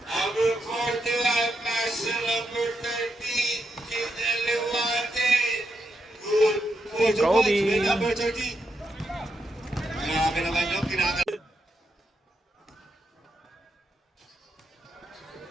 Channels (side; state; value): both; normal; correlation 0.83